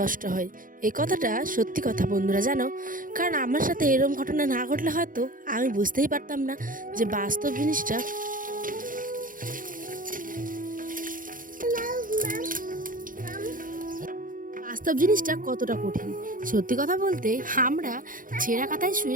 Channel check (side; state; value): left; late; 0.40 ms